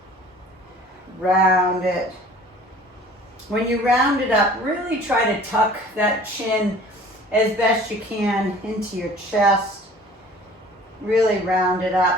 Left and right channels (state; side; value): normal; both; correlation 0.48